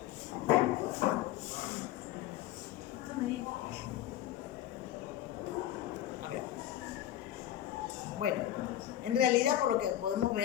A ver. Bueno, en realidad, por lo que podemos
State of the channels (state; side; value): quieter; right; 12.7 dB